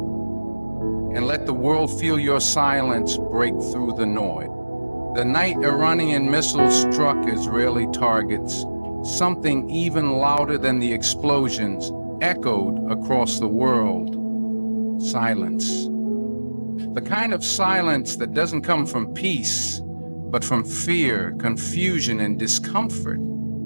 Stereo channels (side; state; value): both; inverted; correlation -1.00